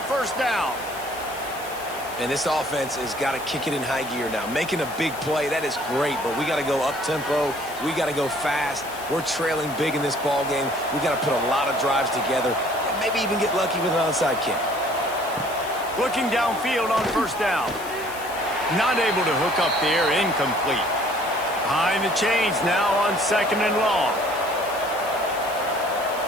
down. And this offense has got to kick it in high gear now. Making a big play, that is great, but we got to go up-tempo. We got to go fast. We're trailing big in this ball game. We got to put a lot of drives together and maybe even get lucky with an onside kick. Looking downfield on 1st down. Not able to hook up there. Incomplete. Behind the chains now on 2nd and long.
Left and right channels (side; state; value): left; noise; hiss, 15 dB below the sound